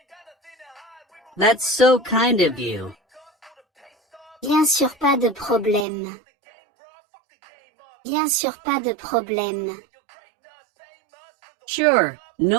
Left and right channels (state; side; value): drops out; left; at 5.9 s